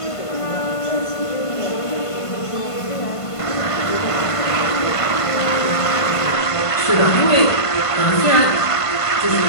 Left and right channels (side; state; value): right; late; 1.5 ms